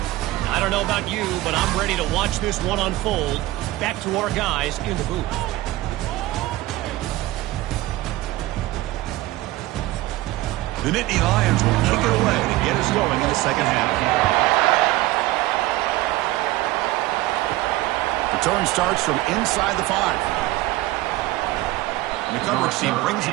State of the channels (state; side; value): quieter; left; 17.4 dB